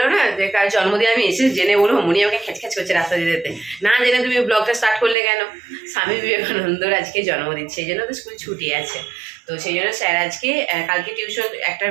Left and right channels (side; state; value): left; drops out; at 5.2 s